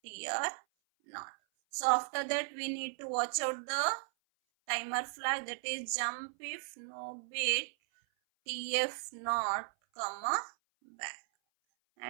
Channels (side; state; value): left; silent; 54 dB below the other